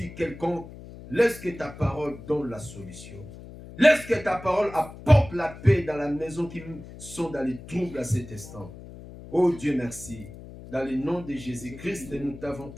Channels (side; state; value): left; noise; hum, 15 dB below the sound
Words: quelconques, laisse que ta parole donne la solution. Laisse que ta parole apporte la paix dans la maison qui sont dans les troubles à cet instant. Oh Dieu, merci. Dans le nom de Jésus-Christ, nous t'avons